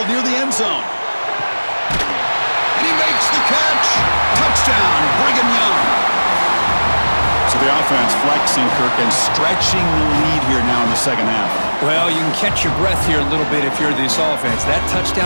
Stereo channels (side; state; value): both; inverted; correlation -1.00